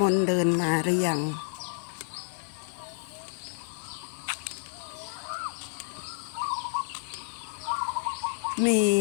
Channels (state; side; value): silent; right; digital silence